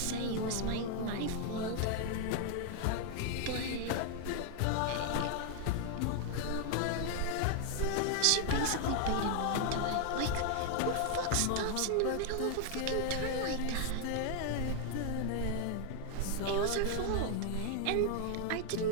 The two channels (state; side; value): different; both; correlation 0.00